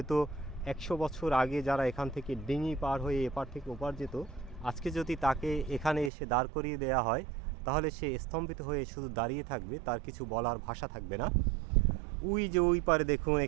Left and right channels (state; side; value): drops out; left; at 6.1 s